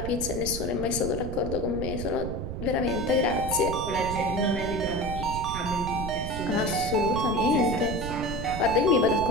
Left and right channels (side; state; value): right; noise; rumble, 6 dB below the sound